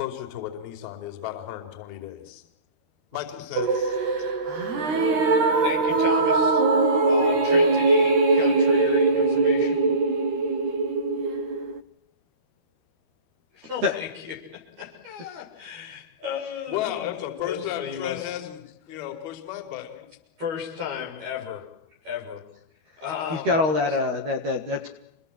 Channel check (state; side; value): late; left; 13 ms